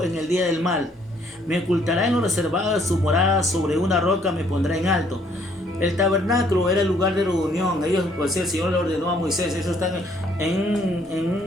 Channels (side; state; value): both; normal; correlation 0.64